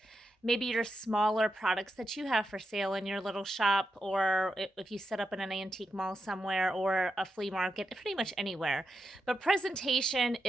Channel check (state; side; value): normal; both; correlation 0.87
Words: maybe your smaller products that you have for sale in your little shop, or if you set up in an antique mall somewhere or a flea market, pretty much anywhere. But presentation